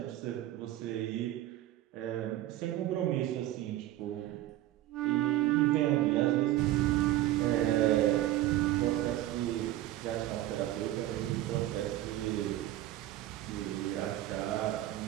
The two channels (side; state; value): left; quieter; 14.6 dB